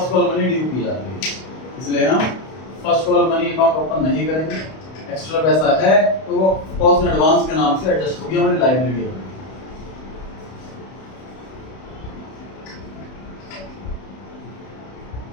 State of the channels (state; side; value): late; right; 31 ms